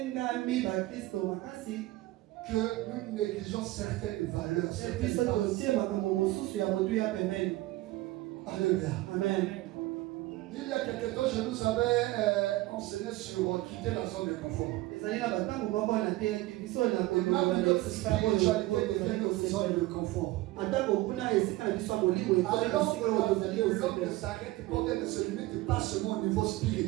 que nous négligeons certaines valeurs. Alléluia. Amen. Il y a quelque temps, je nous avais enseigné sur quitter la zone de confort. Et même notre spiritualité devient notre zone de confort. Alors l'homme ne s'arrête pas, ne se limite pas seulement au niveau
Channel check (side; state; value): left; quieter; 18.2 dB